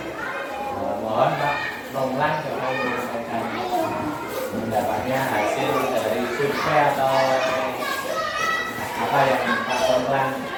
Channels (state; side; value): identical; both; correlation 1.00